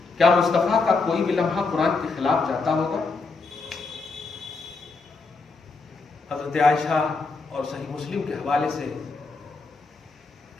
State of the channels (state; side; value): quieter; right; 4.1 dB